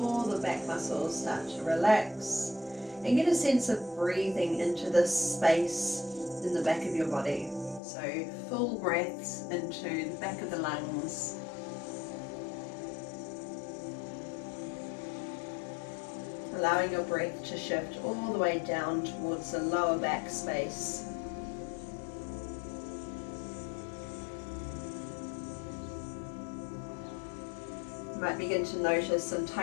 the back muscles start to relax and get a sense of breathing into this space in the back of your body. So full breaths into the back of the lungs. Allowing your breath to shift all the way down towards the lower back space. You might begin to notice some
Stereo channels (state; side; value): drops out; right; at 7.8 s